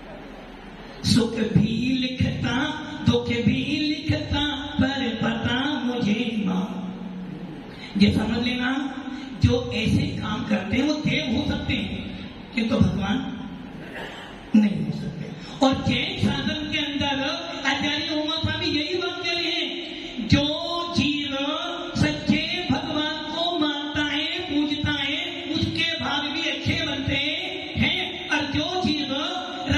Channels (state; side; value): identical; both; correlation 1.00